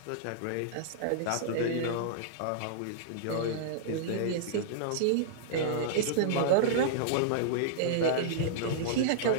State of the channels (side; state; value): both; different; correlation -0.02